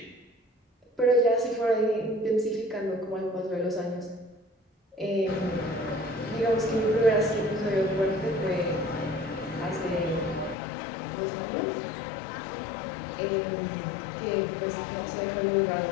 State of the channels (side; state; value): right; drops out; at 10.6 s